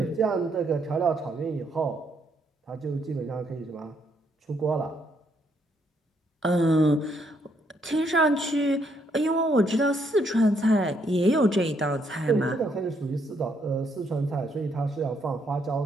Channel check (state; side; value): normal; both; correlation 0.73